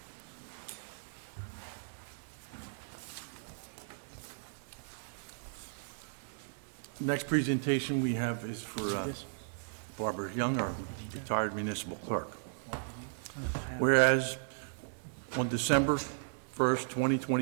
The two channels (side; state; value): left; silent; digital silence